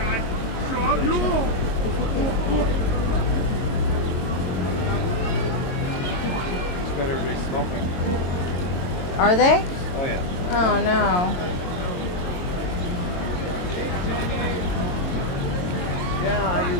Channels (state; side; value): late; right; 22 ms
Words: Everybody's smoking. Are they? Oh yeah. Oh no. Yeah, I